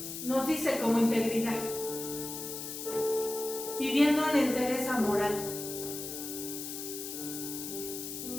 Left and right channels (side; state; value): left; noise; hiss, 7 dB below the sound